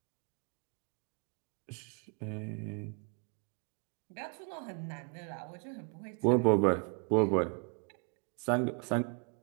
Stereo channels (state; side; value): quieter; left; 36.1 dB